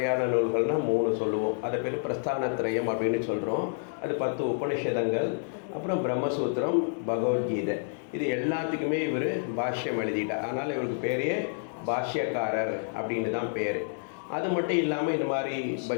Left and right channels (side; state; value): right; silent; digital silence